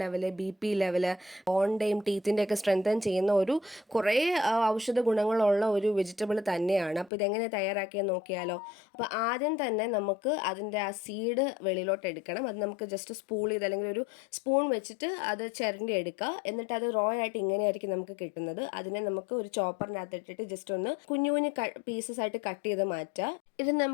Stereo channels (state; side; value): drops out; right; at 7.1 s